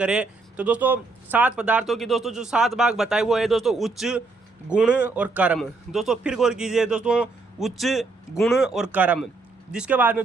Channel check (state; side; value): quieter; left; 3.7 dB